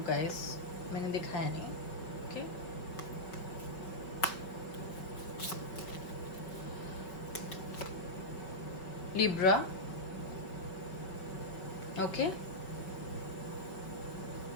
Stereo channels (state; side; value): late; right; 5.3 ms